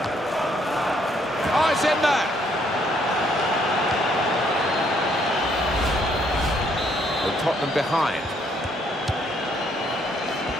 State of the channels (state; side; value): normal; both; correlation 0.69